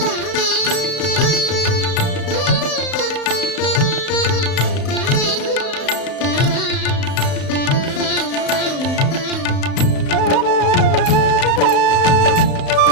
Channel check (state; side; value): late; right; 35 ms